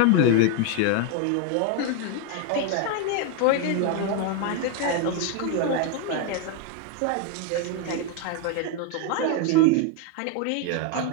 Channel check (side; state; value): both; different; correlation 0.01